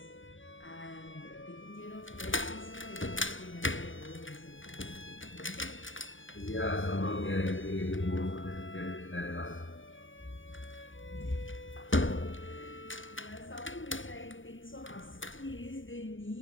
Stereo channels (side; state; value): right; late; 0.57 ms